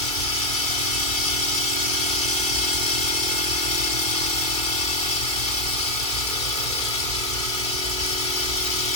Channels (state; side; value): late; right; 2.3 ms